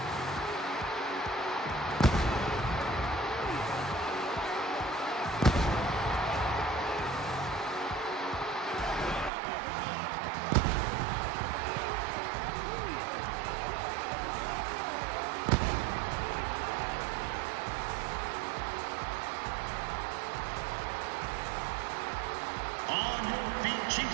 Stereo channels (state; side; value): drops out; left; at 9.3 s